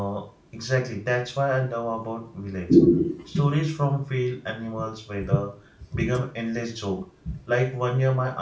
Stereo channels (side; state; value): both; identical; correlation 1.00